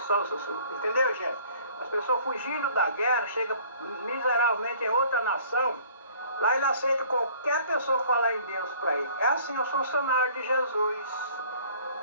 Entendeu, gente? As pessoas fugindo da guerra, chegam miseravelmente em outra nação. Lá ele aceita qualquer pessoa falar em Deus para ele. É assim os funcionários de Jesus.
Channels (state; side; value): inverted; both; correlation -0.53